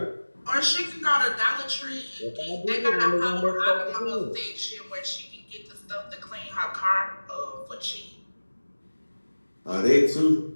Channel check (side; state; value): both; inverted; correlation -1.00